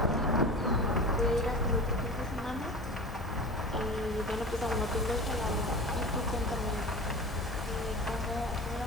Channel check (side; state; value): both; normal; correlation 0.32